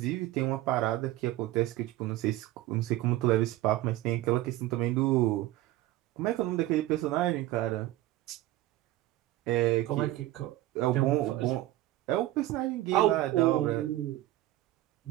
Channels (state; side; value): quieter; left; 15.9 dB